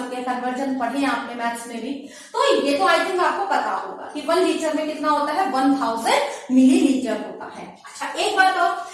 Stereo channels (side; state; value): both; identical; correlation 1.00